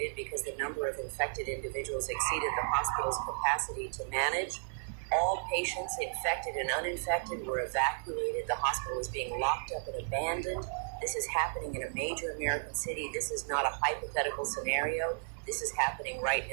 because the number of infected individuals exceeded the hospital's capacity to manage. All patients, infected and uninfected, were evacuated. The hospital was being locked up and abandoned. This is happening in a major American city. This is not a hypothetical scenario. This is happening right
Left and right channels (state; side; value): silent; left; digital silence